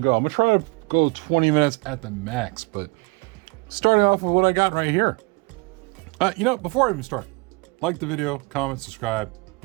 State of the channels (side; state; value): left; quieter; 29.2 dB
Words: I'm gonna try to go 20 minutes at the max, but starting off with what I got right here. Before I even start, like the video, comment, subscribe.